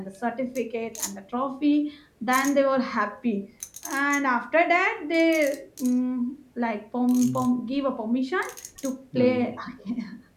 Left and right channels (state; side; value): identical; both; correlation 1.00